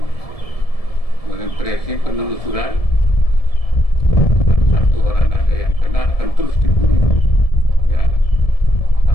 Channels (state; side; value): late; right; 1.7 ms